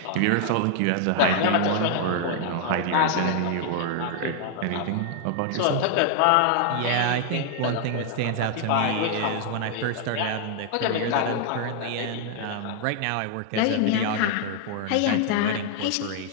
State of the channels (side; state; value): both; different; correlation 0.00